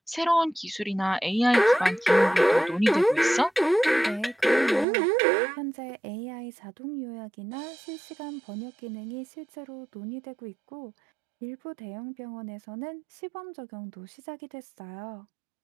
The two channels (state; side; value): drops out; left; at 4.9 s